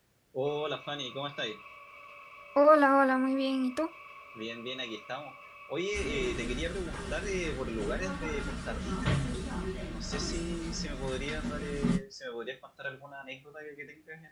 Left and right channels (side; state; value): both; identical; correlation 1.00